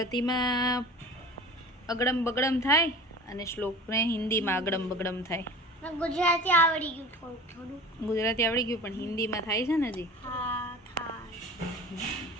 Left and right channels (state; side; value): normal; both; correlation 0.38